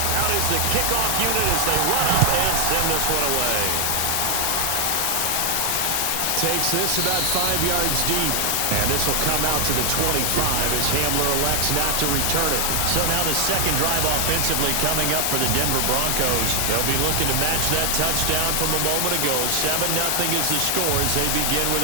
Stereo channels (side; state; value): both; different; correlation 0.00